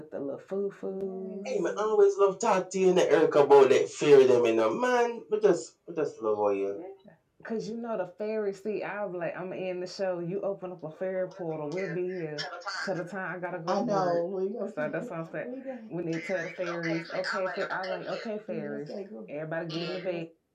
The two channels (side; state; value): both; identical; correlation 1.00